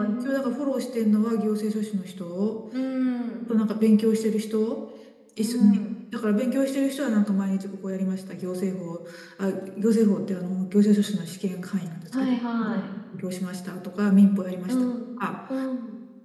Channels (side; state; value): both; identical; correlation 1.00